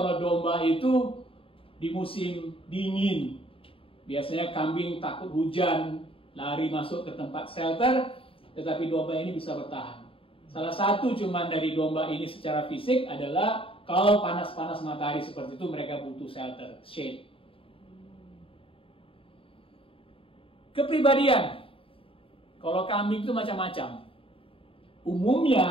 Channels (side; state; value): right; late; 0.26 ms